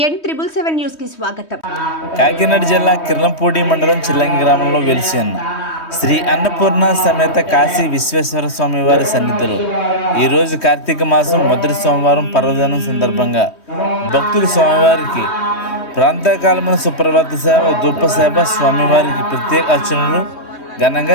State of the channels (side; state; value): right; late; 3.2 ms